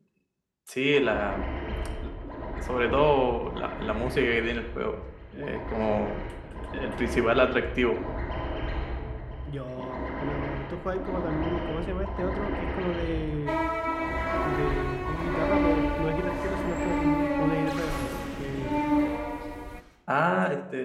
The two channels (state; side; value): identical; both; correlation 1.00